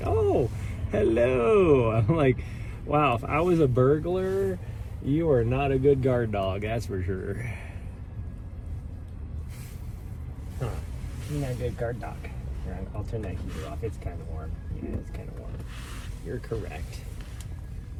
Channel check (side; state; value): both; identical; correlation 1.00